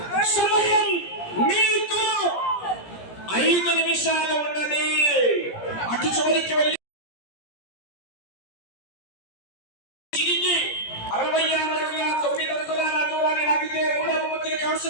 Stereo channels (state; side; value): late; right; 17 ms